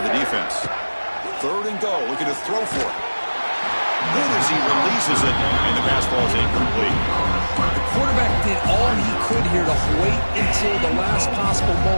the defense. Third and goal, looking to throw for it. Good as he releases it, and the pass ball is incomplete. The quarterback did all he could here to wait until the last possible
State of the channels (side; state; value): both; inverted; correlation -1.00